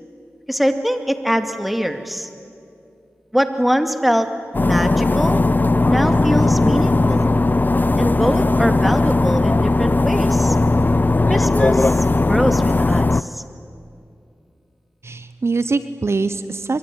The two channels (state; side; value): normal; both; correlation 0.96